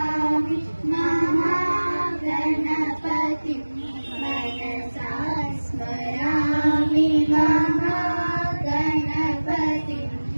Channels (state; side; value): inverted; both; correlation -1.00